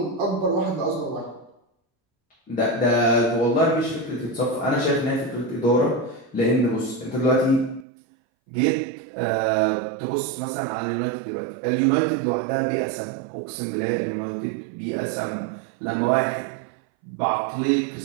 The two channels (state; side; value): drops out; left; at 7.9 s